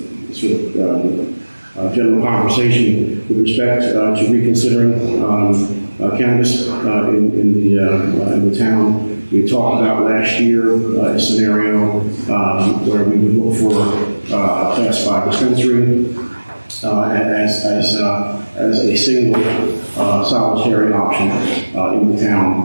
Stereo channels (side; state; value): both; inverted; correlation -1.00